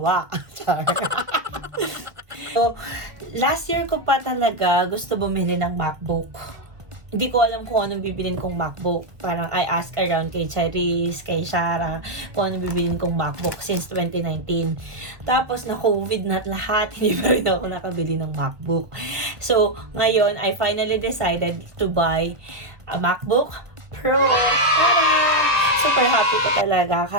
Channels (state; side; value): late; left; 1.3 ms